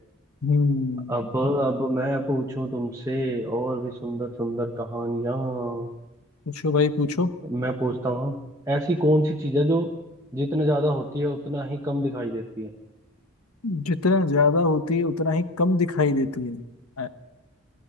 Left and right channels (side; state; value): both; normal; correlation 0.46